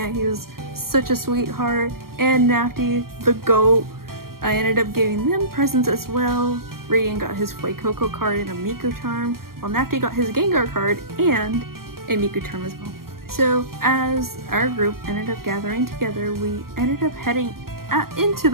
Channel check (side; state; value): left; late; 0.93 ms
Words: he was such a sweetheart. And Nafty, the GOAT. I ended up giving them presents as well. Radiant got his Fuecoco card and a Miku charm, while Nafty got his Gengar card and a Miku charm as well. So as our group ended up gathering together, we ended up heading into